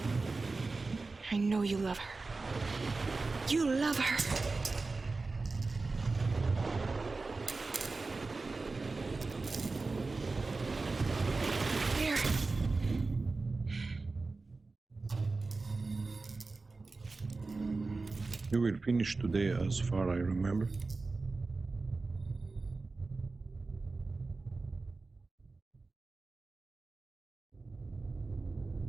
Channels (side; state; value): left; quieter; 3.7 dB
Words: I know you love her. You love her. Here. You will finish today as far I remember.